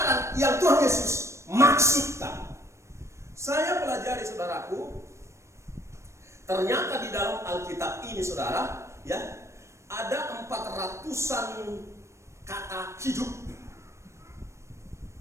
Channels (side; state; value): left; late; 0.14 ms